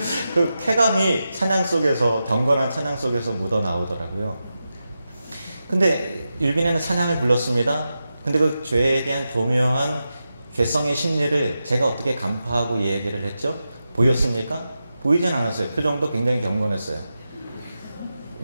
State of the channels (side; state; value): both; inverted; correlation -0.90